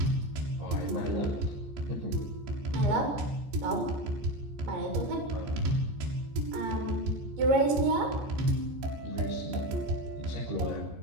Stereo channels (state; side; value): late; left; 14 ms